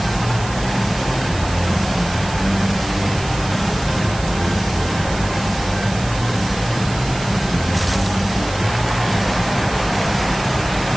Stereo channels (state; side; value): noise; right; hiss, 13 dB below the sound